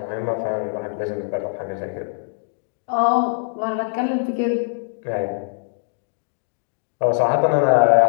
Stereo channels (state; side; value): silent; right; digital silence